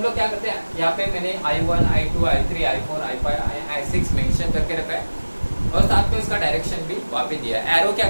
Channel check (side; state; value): both; inverted; correlation -1.00